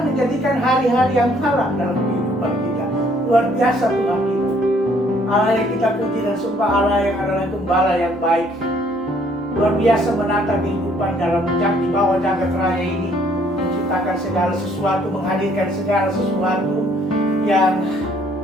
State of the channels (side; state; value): both; normal; correlation 0.63